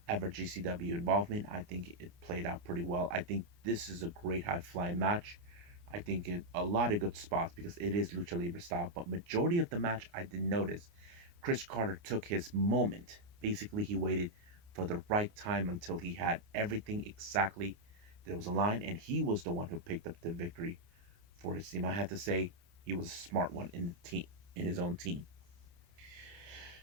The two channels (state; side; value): late; left; 29 ms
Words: ever GCW involvement. I think it played out pretty well. I think this is a great high flying match. I think a lot of good spots because it is Lucha Libre style. But majority of the match, I did notice Chris Carter took his moment. Basically, he waited for the right time until he had everything exactly that was aligned, and he was the one who picked up the victory for his team. I have to say, he was a smart one in the team, in his own team.